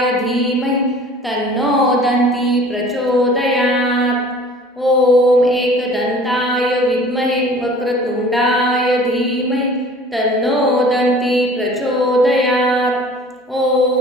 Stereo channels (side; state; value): both; normal; correlation 0.47